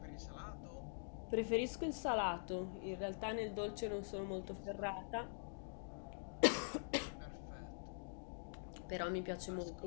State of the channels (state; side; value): silent; right; digital silence